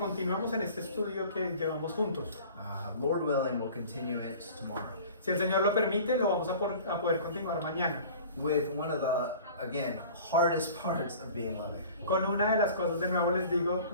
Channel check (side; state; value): both; inverted; correlation -0.44